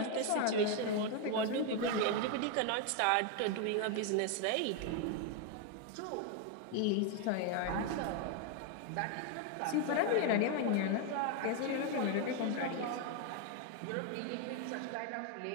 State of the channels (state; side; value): different; both; correlation 0.01